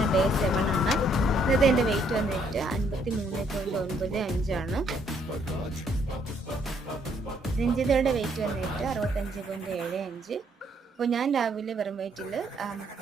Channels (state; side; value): normal; both; correlation 0.68